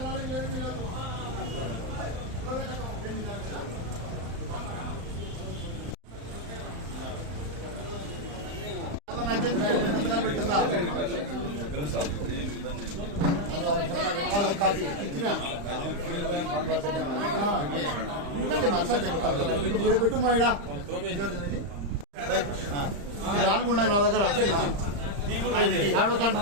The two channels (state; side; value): late; left; 35 ms